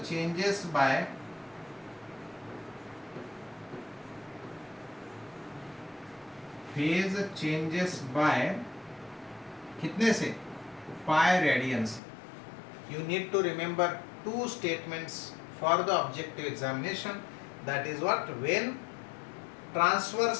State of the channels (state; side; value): drops out; right; at 12.0 s